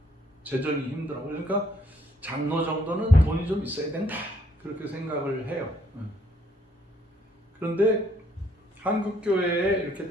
재정이 힘들어. 그러니까 장로 정도는 돈이 좀 있어야 된다. 그렇게 생각을 해요. 그런데 한국 교회에 이렇게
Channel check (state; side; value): normal; both; correlation 0.68